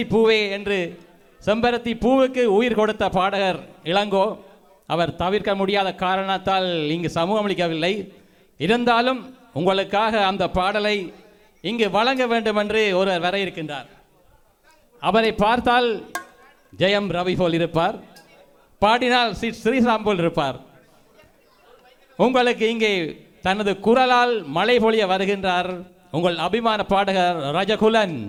பூவே என்று செம்பருத்தி பூவுக்கு உயிர் கொடுத்த பாடகர் இளங்கோ. அவர் தவிர்க்க முடியாத காரணத்தால் இங்கு சமூகமளிக்கவில்லை. இருந்தாலும் உங்களுக்காக அந்த பாடலை இங்கு வழங்க வேண்டும் என்று ஒருவர் வர இருக்கின்றார். அவரை பார்த்தால் ஜெயம் ரவி போல் இருப்பார், பாடினால் ஸ்ரீராம் போல் இருப்பார். உங்களுக்கு இங்கே தனது குரலால் மழை பொழிய வருகின்றார் உங்கள் அபிமான பாடகர் ரஜகுலன்.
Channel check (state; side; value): identical; both; correlation 1.00